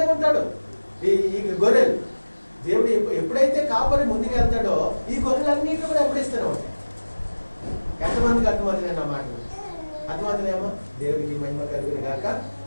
ఉంటాడు ఈ గొర్రెలు. దేవుడు ఎప్పుడైతే కాపరి ముందుకు వెళ్తాడో ఈ గొర్రెలన్నింటినీ కూడా వెంబడిస్తూనే ఉంటాయి. ఎంతమందికి అర్థమవుతుంది నా మాట? అర్థమవుతుందేమో? దేవుడికి మహిమ కలుగును గాక.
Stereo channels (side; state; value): both; inverted; correlation -1.00